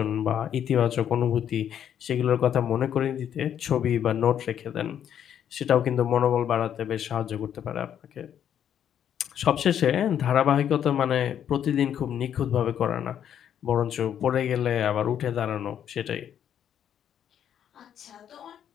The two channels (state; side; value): quieter; right; 9.5 dB